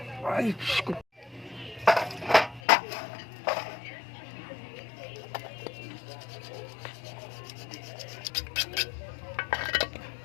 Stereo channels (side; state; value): right; drops out; at 2.6 s